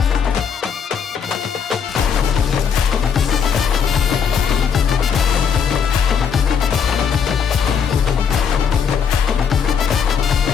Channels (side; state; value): right; quieter; 7.0 dB